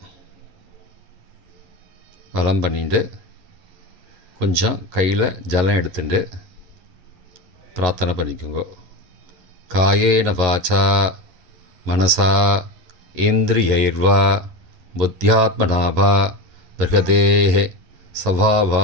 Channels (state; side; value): late; left; 11 ms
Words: வலம் பண்ணிட்டு கொஞ்சம் கையில் ஜலம் எடுத்துட்டு பிரார்த்தனை பண்ணிக்கோங்க. காயேன வாச்சா மனசா இந்திரியைர்வா புத்தியாத்மனாவா பிரகதேஹ